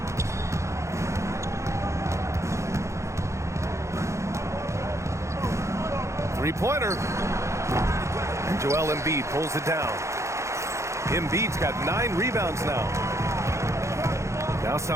Three-pointer. And Joel Embiid pulls it down. Embiid's got 9 rebounds now. Now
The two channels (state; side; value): late; left; 0.14 ms